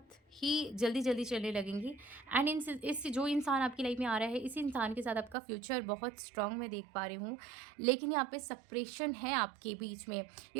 ही जल्दी जल्दी चलने लगेंगी। एंड इस जो इंसान आपकी लाइफ में आ रहा है, इसी इंसान के साथ आपका फ्यूचर बहुत स्ट्रांग मैं देख पा रही हूँ, लेकिन यहाँ पे सेपरेशन है आपके बीच में।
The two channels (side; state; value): left; drops out; at 5.4 s